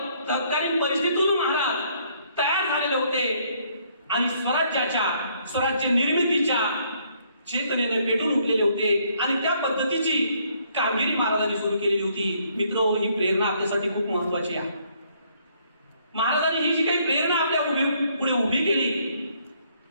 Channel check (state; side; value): inverted; both; correlation -0.67